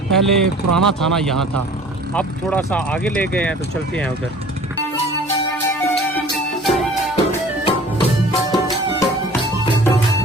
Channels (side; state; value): both; normal; correlation 0.47